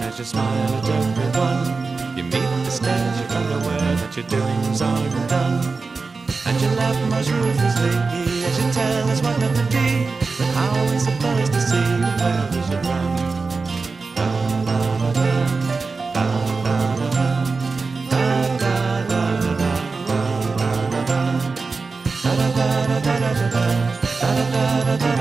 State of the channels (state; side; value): quieter; left; 4.2 dB